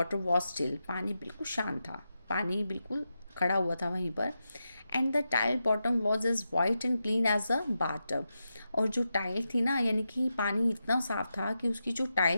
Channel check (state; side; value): inverted; both; correlation -0.88